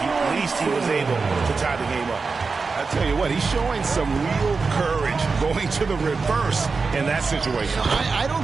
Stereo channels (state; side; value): quieter; left; 4.5 dB